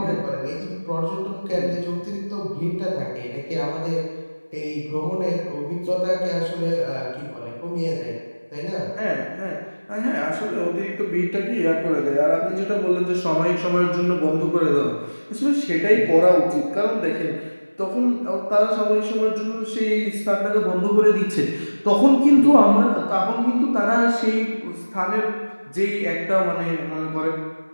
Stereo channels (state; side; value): inverted; both; correlation -1.00